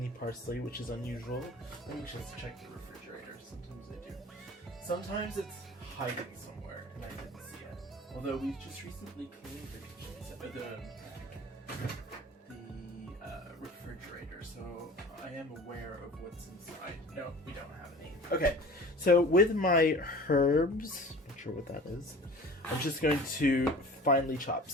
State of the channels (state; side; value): normal; both; correlation 0.42